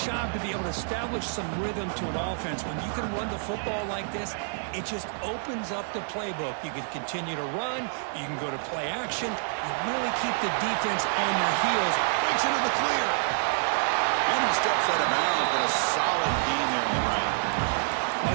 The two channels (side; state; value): left; silent; digital silence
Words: to be able to establish some rhythm to an offense. When you can run the football like this, it just opens up the playbook. You can continue to run. You can go to play action. You really keep the defense on their heels. Breaks into the clear. And he steps out of bounds, but a solid gain there on the ground. Well,